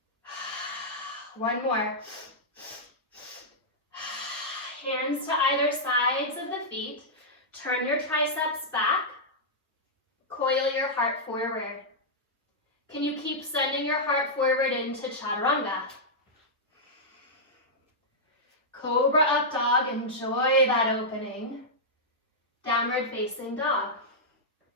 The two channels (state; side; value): normal; both; correlation -0.09